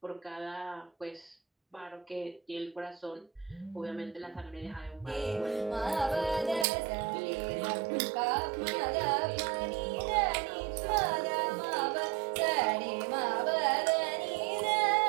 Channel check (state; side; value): drops out; left; at 6.7 s